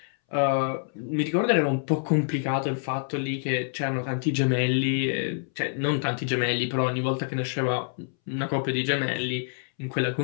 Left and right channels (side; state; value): right; silent; 60 dB below the other